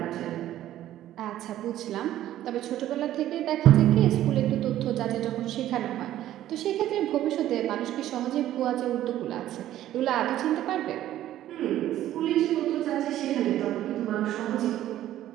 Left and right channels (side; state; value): left; quieter; 13.0 dB